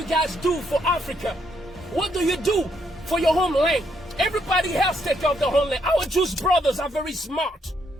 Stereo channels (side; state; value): both; normal; correlation 0.74